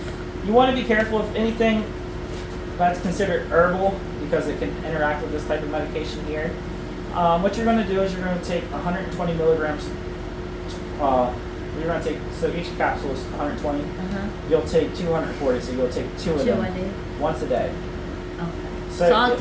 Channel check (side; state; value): both; identical; correlation 1.00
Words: You want to be careful if anything that's considered herbal because it can interact with this type of medication here. What you're going to do is you're going to take 120 milligrams. You're going to take, so each capsule is 120. You'll take 240, so you'll take 2 of 2 them a day? once a day. Okay. So So I'll